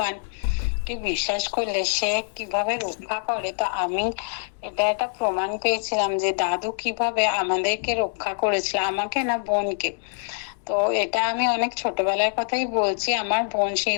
কে বিশ্বাস করলে সে কিভাবে রক্ষা করে, তো আমি এটা একটা প্রমাণ পেয়েছিলাম যে দাদু কিভাবে আমাদেরকে রক্ষা করেছিল, আমাকে না বোনকে। তো এটা আমি অনেক ছোটবেলার কথাই বলছি। আমার বোন সেই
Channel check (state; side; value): silent; right; digital silence